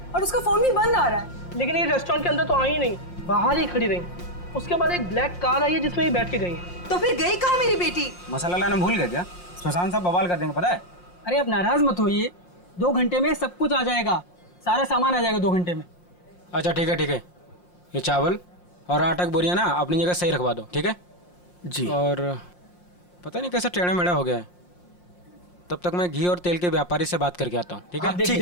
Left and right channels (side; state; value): right; late; 5.6 ms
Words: और उसका फोन भी बंद आ रहा है। लेकिन ये रेस्टोरेंट के अंदर तो आई ही नहीं, बाहर ही खड़ी रही। उसके बाद एक ब्लैक कार आई है जिसमें ये बैठ के गई है। तो फिर गई कहाँ मेरी बेटी? मसाला लाना भूल गए क्या? सुशांत साहब बवाल कर देंगे पता है। अरे अब नाराज मत होइए, 2 घंटे में सब कुछ आ जाएगा, सारा सामान आ जाएगा 2 घंटे में। अच्छा ठीक है ठीक है, ये चावल और आटा की बोरियां ना अपनी जगह सही रखवा दो, ठीक है जी। और पता नहीं कैसा टेढ़ा मेढ़ा हो गया है, तब तक मैं घी और तेल के व्यापारी से बात करके आता हूँ, ठीक है? ठीक